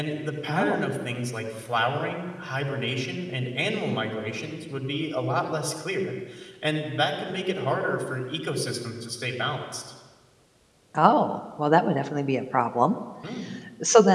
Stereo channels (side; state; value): both; identical; correlation 1.00